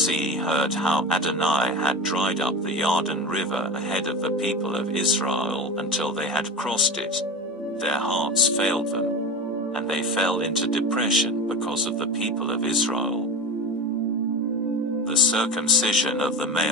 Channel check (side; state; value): both; normal; correlation 0.27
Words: heard how Adonai had dried up the Jordan river ahead of the people of Israel until they had crossed it, their hearts failed them, and they fell into depression because of the people of Israel. The circumcision of the